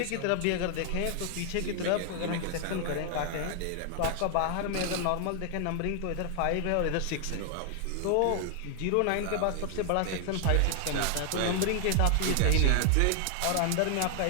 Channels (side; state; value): both; different; correlation 0.00